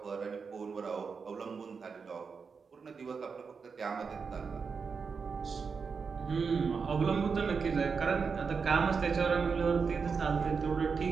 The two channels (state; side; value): quieter; left; 5.4 dB